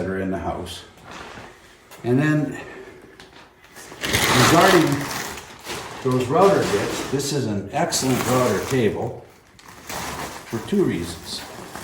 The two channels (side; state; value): both; identical; correlation 1.00